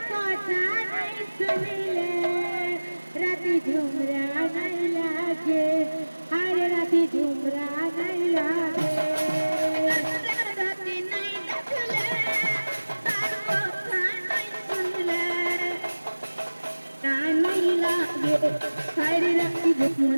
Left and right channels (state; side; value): inverted; both; correlation -1.00